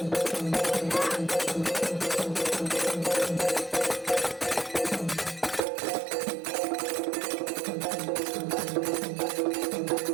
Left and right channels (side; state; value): left; drops out; at 5.6 s